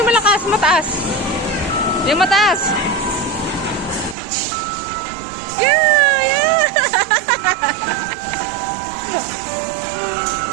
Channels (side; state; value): left; drops out; at 4.2 s